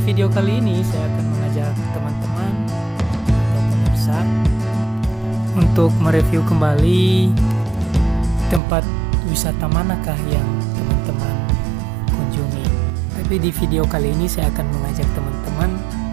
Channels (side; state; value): left; drops out; at 8.6 s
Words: kali ini saya akan mengajak teman-teman atau pemirsa untuk mereview kembali tempat wisata manakah yang teman-teman kunjungi. Tapi di video kali ini saya akan mengajak teman-teman